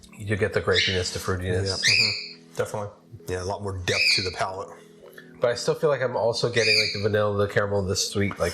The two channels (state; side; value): identical; both; correlation 1.00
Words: do get the grapiness, the fruitiness. Yeah. Definitely. Yeah, a lot more depth to the palate. But I still feel like I'm also getting like the vanilla, the caramel, the sweet,